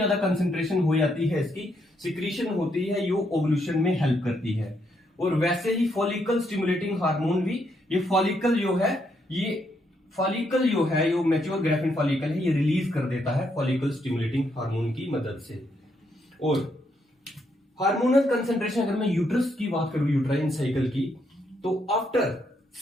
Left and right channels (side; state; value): both; normal; correlation 0.76